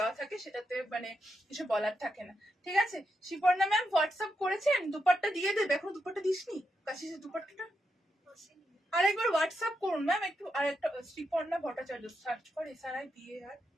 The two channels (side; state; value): both; normal; correlation 0.84